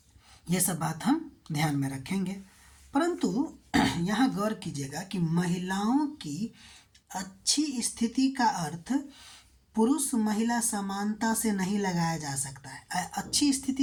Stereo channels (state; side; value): identical; both; correlation 1.00